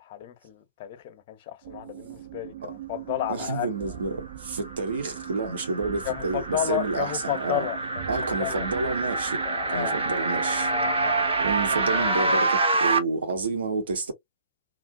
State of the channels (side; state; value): both; inverted; correlation -0.58